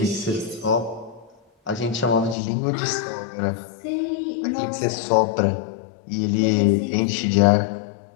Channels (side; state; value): right; drops out; at 2.4 s